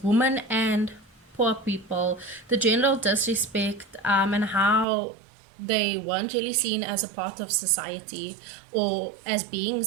women and poor people, the general disrespect, and how they weren't really seen as a part of society or as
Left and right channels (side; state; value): left; drops out; at 4.9 s